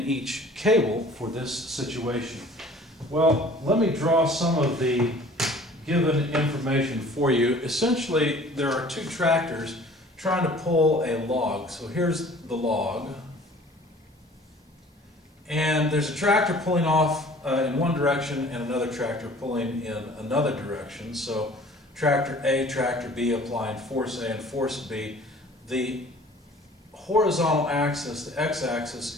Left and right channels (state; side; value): normal; both; correlation 0.49